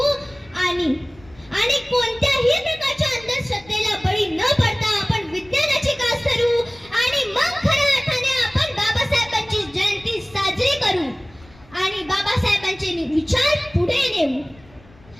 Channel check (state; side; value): noise; left; rumble, 25 dB below the sound